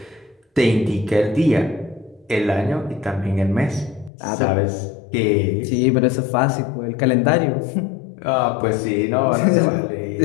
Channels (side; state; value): right; drops out; at 4.1 s